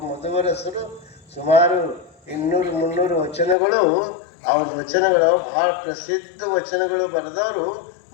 ಮಧುವರಸರು ಸುಮಾರು 200-300 ವಚನಗಳು, ಅವ್ರ ವಚನಗಳು ಭಾಳ ಪ್ರಸಿದ್ಧ ವಚನಗಳು ಬರೆದವರು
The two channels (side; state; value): right; drops out; at 3.6 s